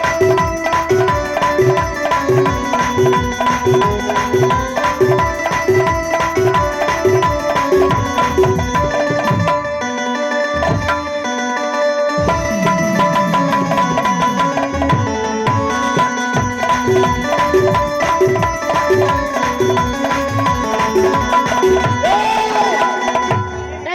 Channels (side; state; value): both; identical; correlation 1.00